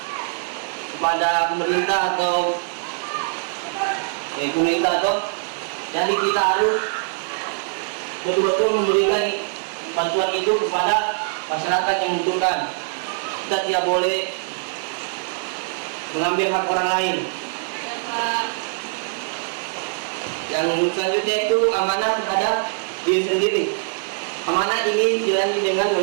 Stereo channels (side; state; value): left; silent; 58 dB below the other